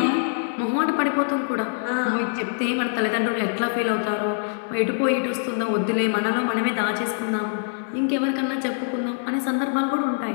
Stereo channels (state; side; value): silent; right; 63 dB below the other